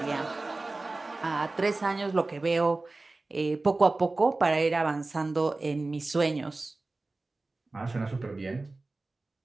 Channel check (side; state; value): left; quieter; 3.2 dB